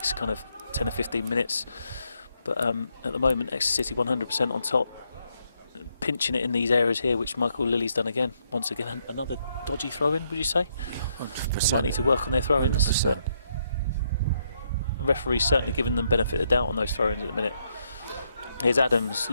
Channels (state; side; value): inverted; both; correlation -0.76